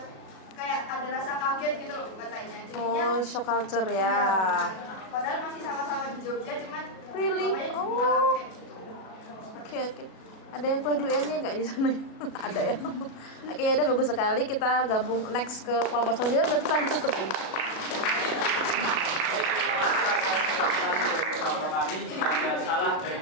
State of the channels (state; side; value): late; right; 37 ms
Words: kayak ada rasa kaget gitu loh katanya. Jadinya Oh, shock culture ya. padahal masih sama-sama di Jogja cuman Really? bapaknya Oh. ngalamin kayak gitu. Oke. Ada yang kuliah di UN-nya nggak di sana? Ada ya. Oke, ya udah bagus sekali. Kita gabung next ke kelompok selanjutnya. Berarti kita ditutupin. Kami jika ada salah dari